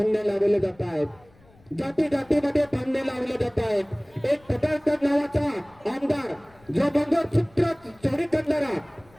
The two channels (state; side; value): noise; left; rumble, 29 dB below the sound